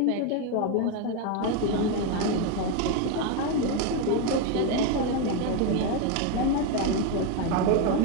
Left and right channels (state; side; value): different; both; correlation 0.02